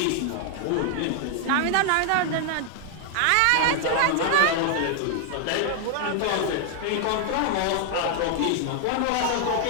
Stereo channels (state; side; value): different; both; correlation 0.00